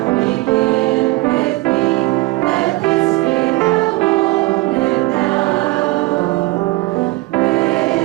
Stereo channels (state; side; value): quieter; left; 21.3 dB